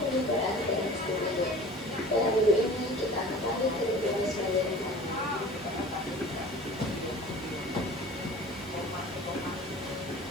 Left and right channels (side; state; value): both; normal; correlation 0.42